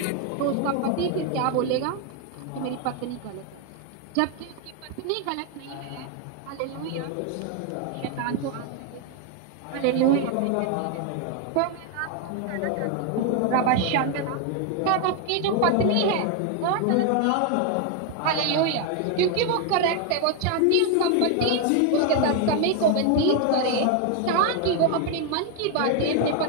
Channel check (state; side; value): different; both; correlation 0.01